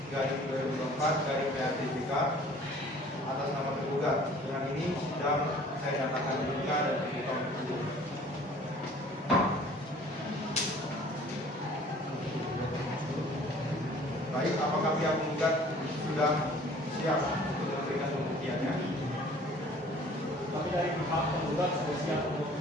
garing 2024 garing PRTJK atas nama tergugat. Dengan ini sidang saya nyatakan dibuka dan terbuka untuk umum. Baik, apakah pihak penggugat sudah siap untuk memberikan pembuktiannya? Kami dari pihak penggugat sudah siap untuk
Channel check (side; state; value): both; normal; correlation 0.51